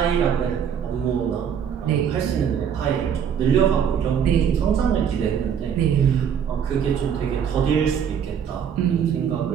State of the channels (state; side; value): quieter; left; 8.1 dB